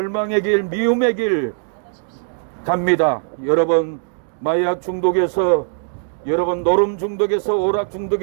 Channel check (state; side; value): silent; left; digital silence